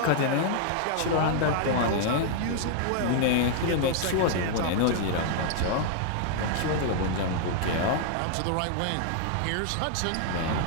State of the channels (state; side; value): different; both; correlation 0.00